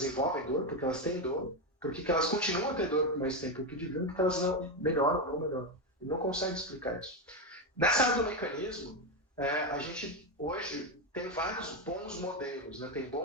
dor, porque elas têm dor, porque elas continuam a ter dor por mais tempo que deviam, porque elas não melhoram, não melhoram. Ele não consegue explicar isso. Nessa área do mecanismo, a gente hoje tem vários bons modelos. Né? Tem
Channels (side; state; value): both; normal; correlation 0.09